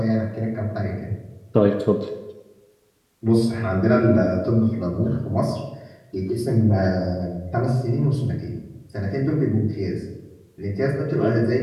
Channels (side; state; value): both; identical; correlation 1.00